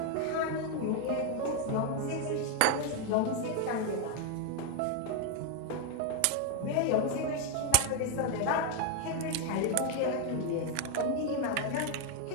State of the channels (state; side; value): different; both; correlation 0.01